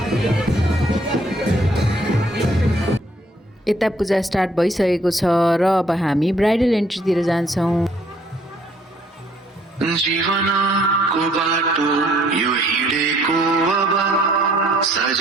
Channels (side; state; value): both; normal; correlation 0.63